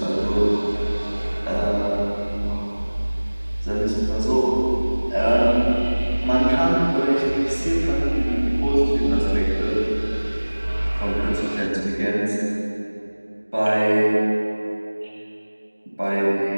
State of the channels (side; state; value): both; inverted; correlation -1.00